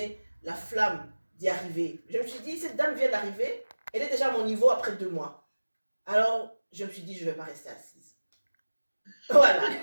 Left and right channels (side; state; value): both; inverted; correlation -1.00